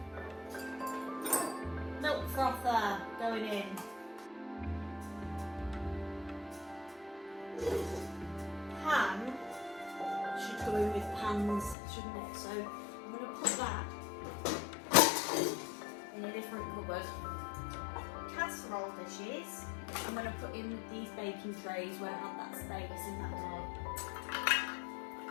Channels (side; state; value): right; drops out; at 11.8 s